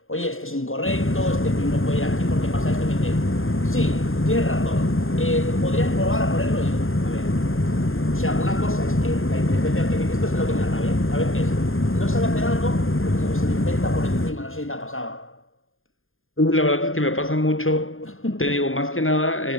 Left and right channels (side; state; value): right; late; 0.60 ms